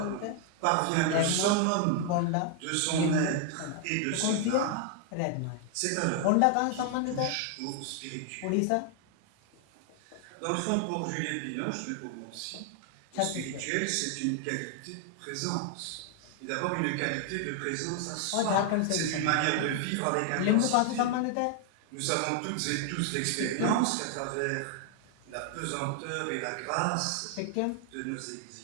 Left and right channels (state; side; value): different; both; correlation 0.00